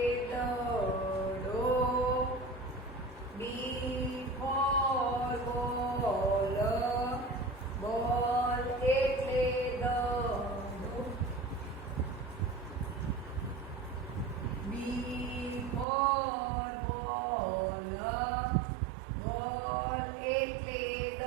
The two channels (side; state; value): left; drops out; at 15.9 s